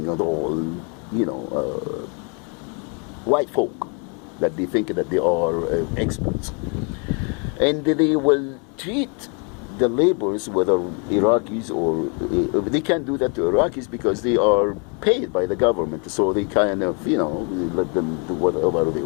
and all, white folk that they think that they are experts. And they will treat the laborers, whether Iraqis or, they can't do that to Iraqis because they are paid by the government, so they kind of, let them do whatever they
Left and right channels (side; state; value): right; quieter; 36.1 dB